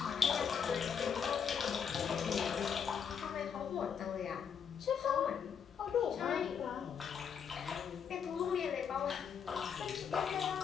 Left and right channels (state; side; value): quieter; right; 7.3 dB